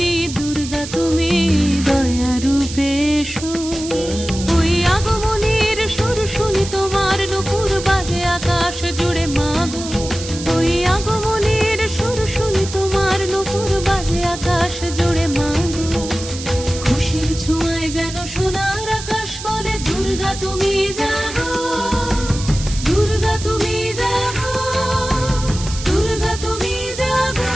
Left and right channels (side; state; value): right; noise; hiss, 10 dB below the sound